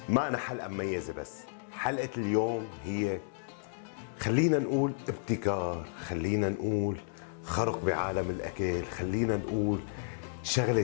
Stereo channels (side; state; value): right; silent; digital silence